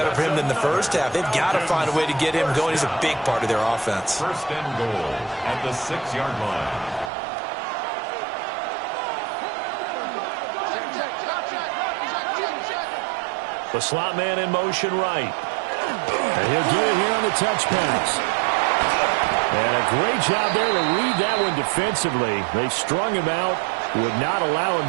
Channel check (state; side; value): drops out; left; at 7.1 s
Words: for him than the first half. They've got to find a way to get him going. He's a big part of their offense. First and goal at the 6-yard line. The slot man in motion right. And he'll get it here on the touch pass. And a great job there to read that one defensively. They strung him out, would not allow him